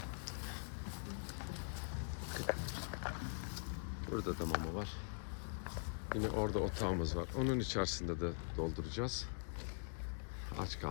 Burada da mama var. Yine orada otağımız var. Onun içerisinde de dolduracağız. Aç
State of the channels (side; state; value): right; silent; digital silence